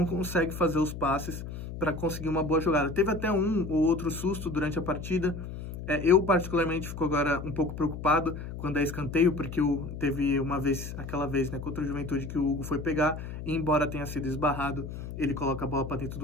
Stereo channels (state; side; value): noise; left; hum, 9 dB below the sound